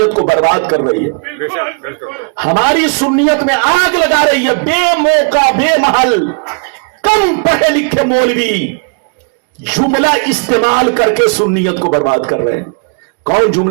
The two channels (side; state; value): left; quieter; 39.1 dB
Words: کو برباد کر رہی ہے, ہماری سنیت میں آگ لگا رہی ہے. بے موقع بے محل کم پڑھے لکھے مولوی جملہ استعمال کر کے سنیت کو برباد کر رہے ہیں. کون